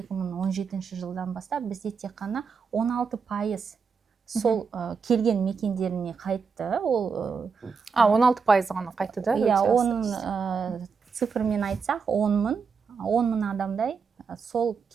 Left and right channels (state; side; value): quieter; left; 5.6 dB